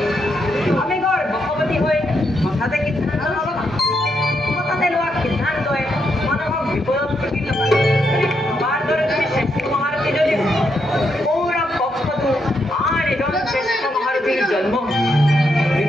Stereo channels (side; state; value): both; normal; correlation 0.80